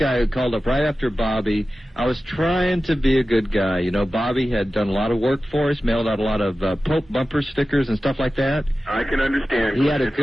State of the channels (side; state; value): both; normal; correlation 0.95